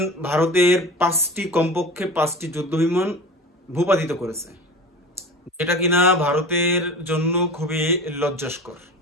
ভারতের কমপক্ষে 5টি যুদ্ধ বিমান ভূপাতিত করেছে, যেটা কিনা ভারতের জন্য খুবই লজ্জাস্কর।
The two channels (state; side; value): normal; both; correlation 0.33